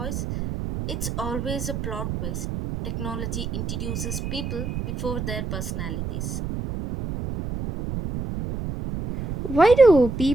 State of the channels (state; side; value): noise; right; rumble, 5 dB below the sound